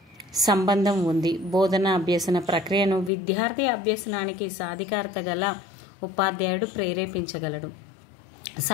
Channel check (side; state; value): right; drops out; at 3.1 s